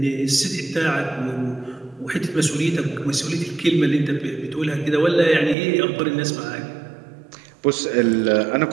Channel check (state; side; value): drops out; left; at 5.6 s